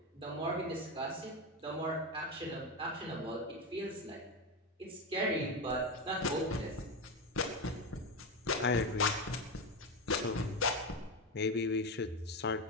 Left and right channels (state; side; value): normal; both; correlation 0.14